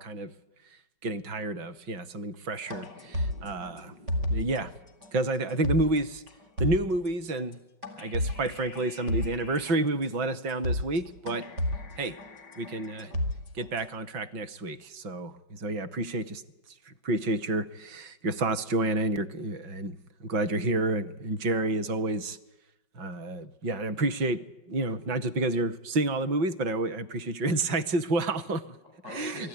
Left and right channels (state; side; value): late; left; 5.4 ms